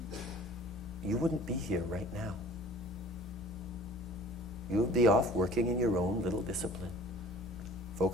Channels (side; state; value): both; normal; correlation 0.47